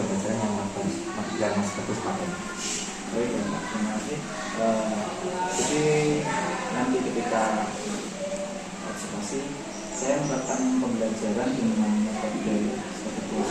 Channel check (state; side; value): identical; both; correlation 1.00